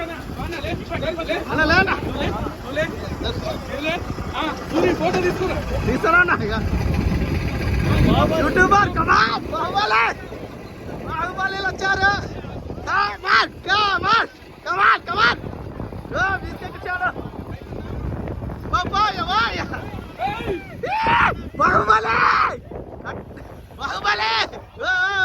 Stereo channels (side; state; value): both; identical; correlation 1.00